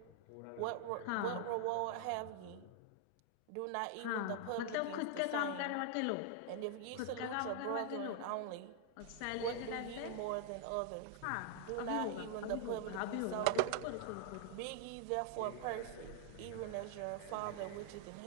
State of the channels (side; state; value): both; different; correlation -0.01